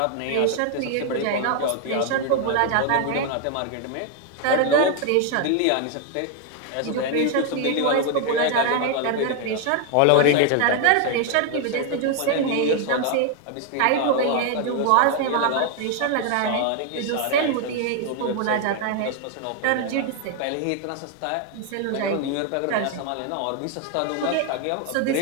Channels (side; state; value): both; different; correlation 0.00